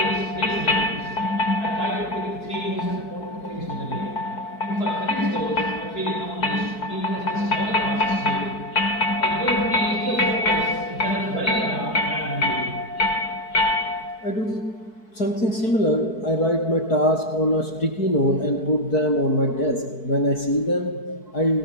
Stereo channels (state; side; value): late; right; 4.6 ms